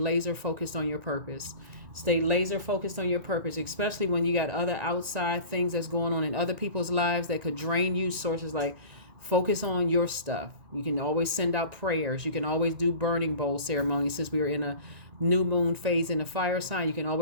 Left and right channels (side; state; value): left; late; 1.9 ms